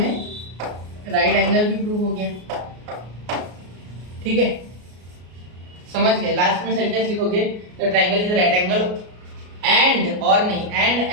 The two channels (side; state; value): left; late; 33 ms